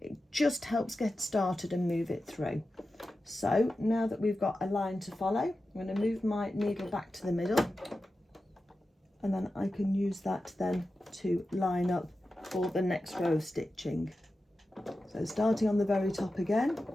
it just helps get started and move it through. So now that we've got a line to follow, I'm going to move my needle back to the middle, and then I can use that then to line up for the next row of stitching. So starting on the very top again,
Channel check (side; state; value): both; normal; correlation 0.93